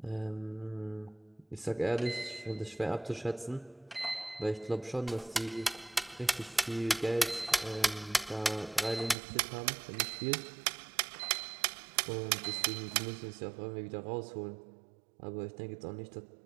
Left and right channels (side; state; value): left; drops out; at 9.2 s